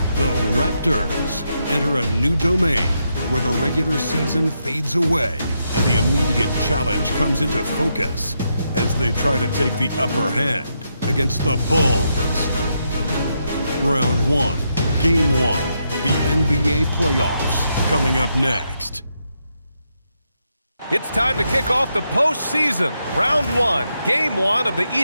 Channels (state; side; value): inverted; both; correlation -0.81